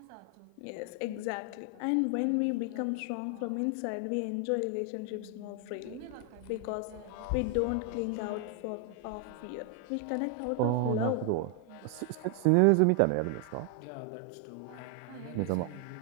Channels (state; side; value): different; both; correlation 0.00